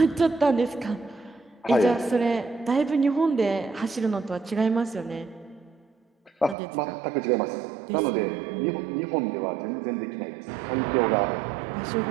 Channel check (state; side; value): drops out; left; at 6.6 s